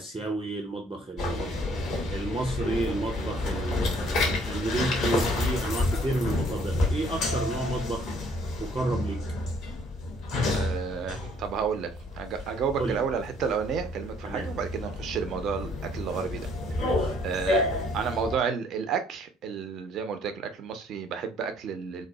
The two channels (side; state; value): both; normal; correlation 0.62